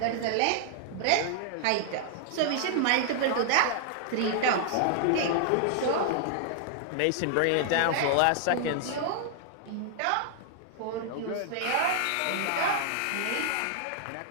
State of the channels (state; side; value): different; both; correlation 0.00